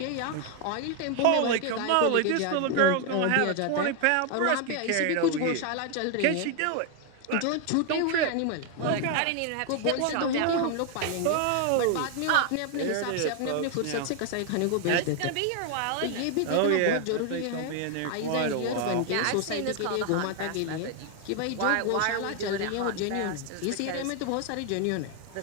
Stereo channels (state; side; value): different; both; correlation 0.00